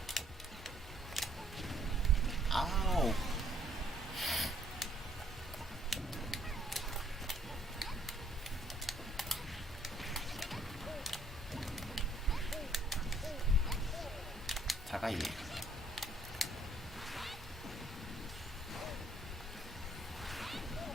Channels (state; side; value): normal; both; correlation 0.64